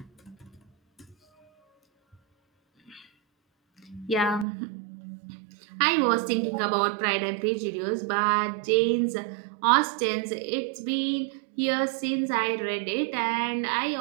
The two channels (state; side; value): drops out; left; at 4.5 s